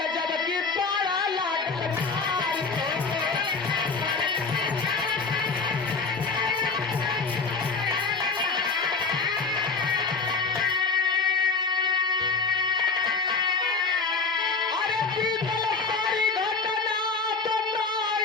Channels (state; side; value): quieter; right; 4.6 dB